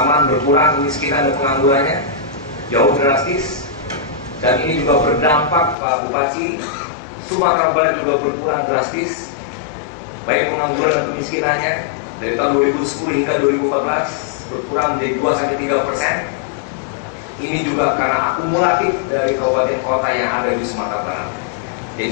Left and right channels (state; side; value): drops out; right; at 5.8 s